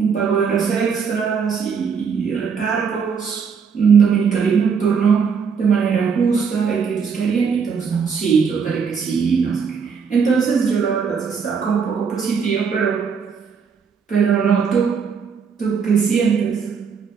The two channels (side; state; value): left; quieter; 6.1 dB